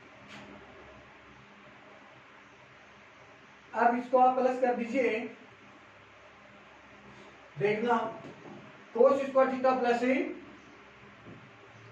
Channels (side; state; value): both; identical; correlation 1.00